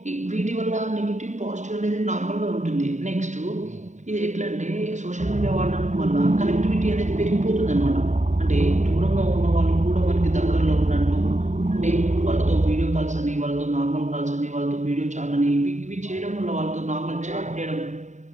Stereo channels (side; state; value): left; late; 0.34 ms